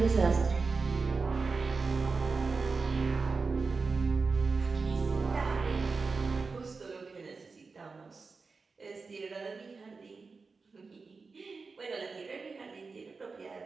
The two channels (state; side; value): quieter; left; 4.4 dB